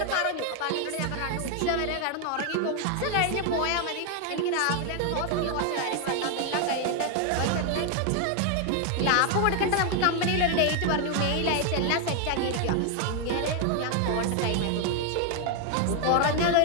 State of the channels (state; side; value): different; both; correlation 0.00